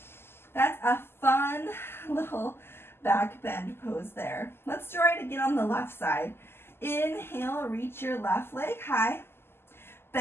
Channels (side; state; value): right; late; 0.12 ms